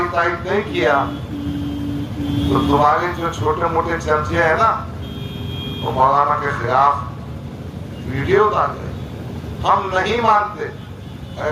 तारीफ नहीं किया तो तुम्हारे जो छोटे मोटे चर्चे हैं ना, वो मौलाना के खिलाफ वीडियो डाल रहे। हम नहीं मानते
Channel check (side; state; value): both; identical; correlation 1.00